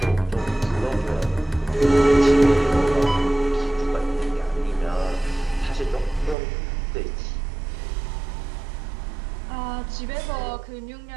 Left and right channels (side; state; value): left; drops out; at 6.4 s